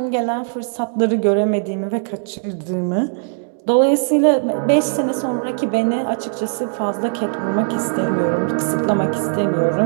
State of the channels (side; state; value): left; silent; 66 dB below the other